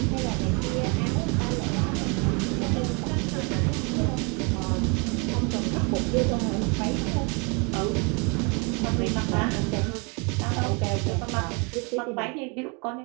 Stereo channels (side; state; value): left; quieter; 32.6 dB